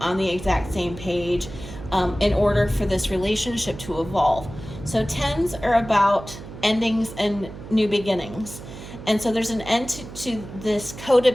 page, in order for this relationship to evolve. So 10s are about endings and new beginnings. And so there's an end to this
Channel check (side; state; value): right; noise; hum, 13 dB below the sound